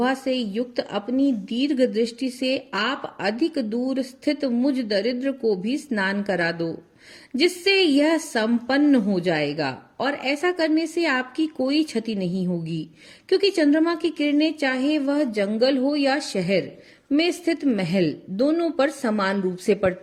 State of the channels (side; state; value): both; identical; correlation 1.00